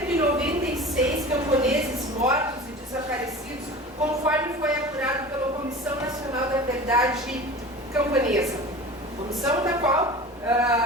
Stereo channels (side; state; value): both; normal; correlation 0.36